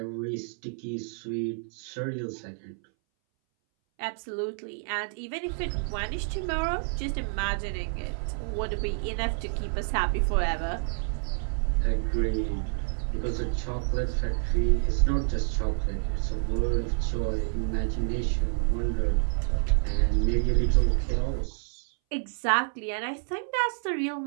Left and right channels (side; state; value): left; silent; 59 dB below the other